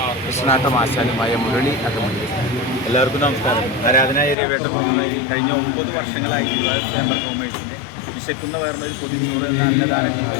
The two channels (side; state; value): right; drops out; at 4.4 s